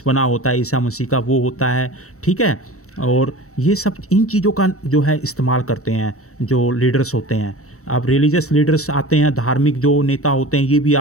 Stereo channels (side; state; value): right; late; 0.64 ms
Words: बना होता है ईसा मसीह का वो होता है। ठीक है, और ये सब इन चीज़ों का जो है इस्तेमाल करते हैं जो लीडर्स होते हैं। अब रिलीजियस लीडर्स आते हैं, धार्मिक जो नेता होते हैं ये भी